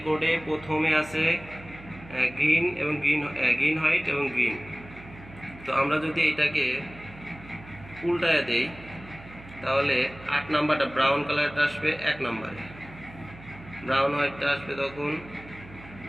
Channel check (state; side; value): noise; right; hum, 18 dB below the sound